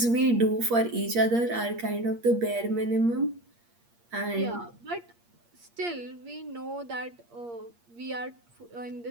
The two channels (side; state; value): left; late; 8.5 ms